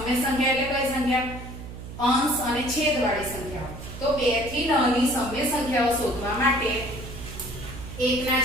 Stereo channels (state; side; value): noise; right; hum, 11 dB below the sound